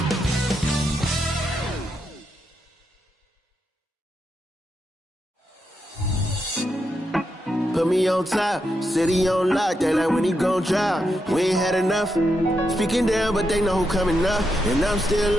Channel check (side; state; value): both; normal; correlation 0.84